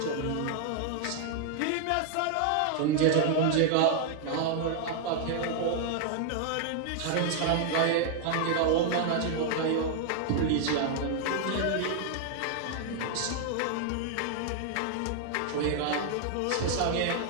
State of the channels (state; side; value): different; both; correlation 0.00